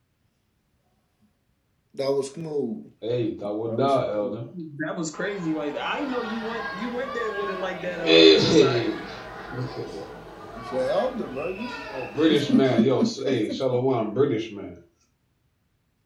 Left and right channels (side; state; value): both; identical; correlation 1.00